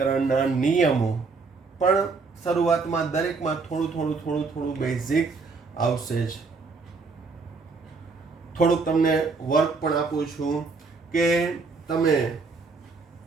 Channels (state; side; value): quieter; left; 4.3 dB